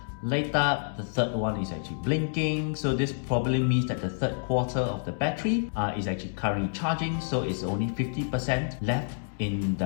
lit up, the third one is actually blinking, so this probably means that the third quarter of the battery is actually currently charging, so it's only 50% left in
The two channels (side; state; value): right; silent; 59 dB below the other